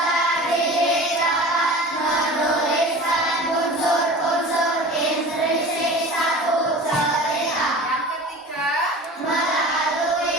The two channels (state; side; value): normal; both; correlation 0.38